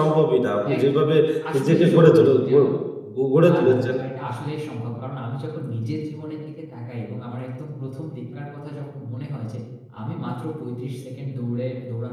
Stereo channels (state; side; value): identical; both; correlation 1.00